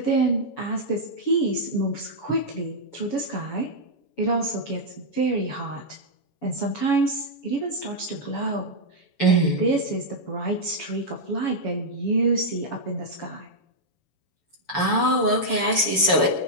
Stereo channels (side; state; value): right; late; 7.0 ms